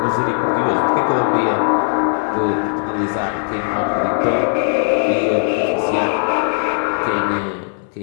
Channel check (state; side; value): silent; right; 67 dB below the other